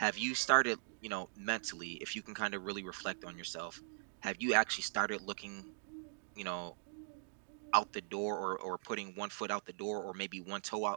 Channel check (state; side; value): silent; left; digital silence